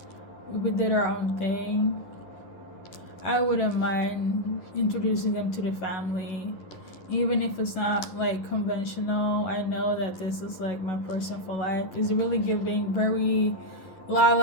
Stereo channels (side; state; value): right; late; 11 ms